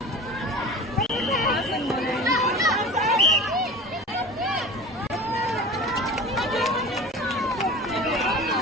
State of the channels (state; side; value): normal; both; correlation 0.35